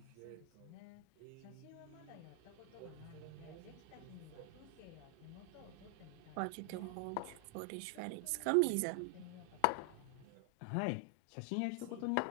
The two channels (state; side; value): different; both; correlation 0.00